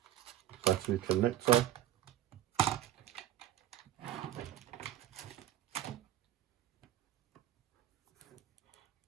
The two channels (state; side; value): quieter; left; 12.7 dB